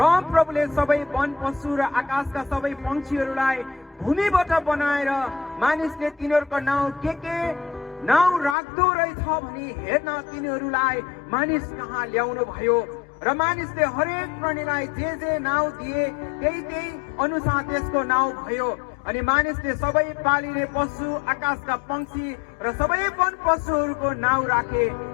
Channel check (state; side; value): drops out; right; at 8.6 s